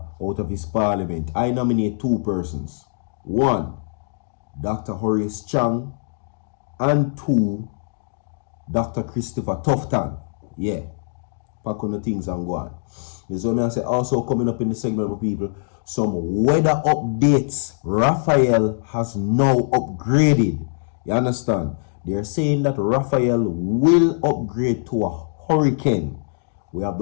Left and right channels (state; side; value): silent; right; digital silence